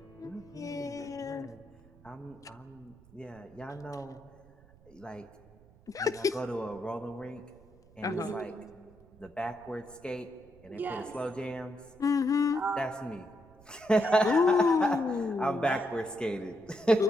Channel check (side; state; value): right; noise; rumble, 25 dB below the sound